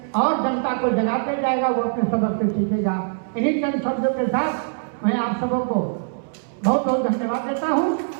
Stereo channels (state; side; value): silent; left; 64 dB below the other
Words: और जनता को जगाते जाएगा, वो अपने सबक से सीखेगा। इन्हीं चंद शब्दों के साथ मैं आप सबों को बहुत बहुत धन्यवाद देता हूँ।